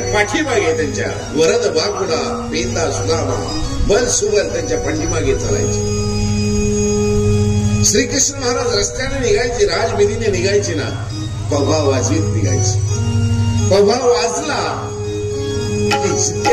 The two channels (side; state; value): both; identical; correlation 1.00